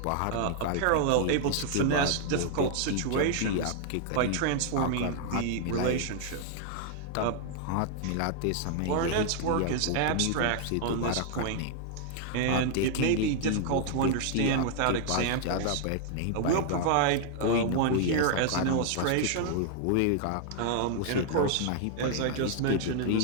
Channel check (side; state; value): both; different; correlation 0.00